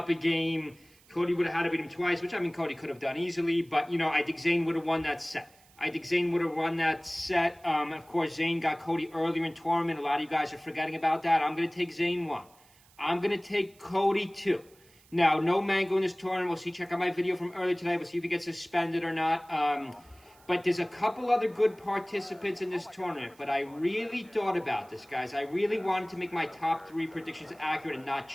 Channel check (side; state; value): right; noise; hiss, 28 dB below the sound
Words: a game. Cody would have had to beat him twice, which, I mean, Cody could have done easily. But, I think Zayn would have won that set. Of course, Zayn got Cody earlier in tournament. A lot of you guys are forgetting about that. I'm going to take Zayn 1. I'm going to take Cody 2. Now, no Mango in this tournament. We'll see. Check out my video from earlier today. We'll see if he gets suspended or not. But there's a couple other good participants in this tournament. But I really thought about this, guys. I really wanted to make my top 3 predictions accurate and not